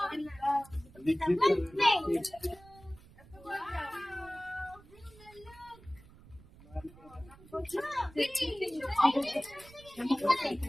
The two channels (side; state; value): right; noise; rumble, 23 dB below the sound